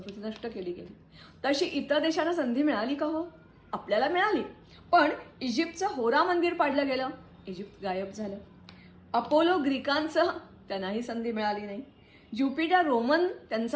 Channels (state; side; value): identical; both; correlation 1.00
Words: नष्ट केली गेली तशी इतर देशांना संधी मिळाली का? हो, आपल्याला मिळाली. पण इजिप्तचं होरा मंदिर पाडलं गेलं, इजिप्त गायब झालं. अपोलो ग्रीकांचं, त्यांनाही संधी मिळाली नाही. ज्युपिटर रोमन,